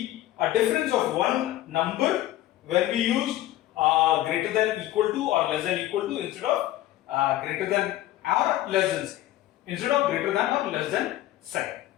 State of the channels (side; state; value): right; quieter; 14.8 dB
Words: a difference of one number when we use greater than equal to or less than equal to instead of greater than or less than sign. Instead of greater than or less than sign.